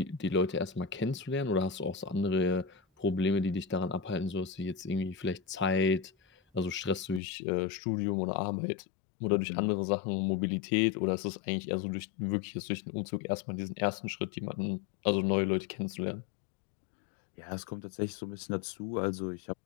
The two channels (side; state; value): right; drops out; at 7.2 s